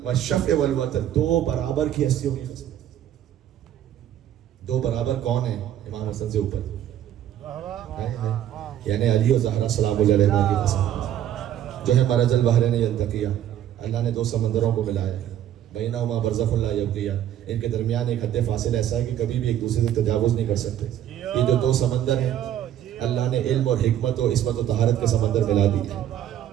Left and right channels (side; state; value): left; quieter; 11.1 dB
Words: والوتر، 2 برابر کی ہستیوں کی قسم. 2 برابر کون ہیں؟ امام حسن سے اوپر، یعنی علی و زہرا سلام اللہ علیہ کی قسم، جو ہے مرج البحرین یلتقیہ، اللہ نے 2 سمندروں کو ملایا، بینہما برزخ لا یبغیہ، ان کے درمیان ایک حد فاصل ایسا ہے کہ کبھی بھی ایک دوسرے سے تجاوز نہیں کر سکتے. یہ جو 2 سمندر ہیں اللہ نے علم اور حکمت و عصمت و طہارت کے سمندر ملا دی ہے،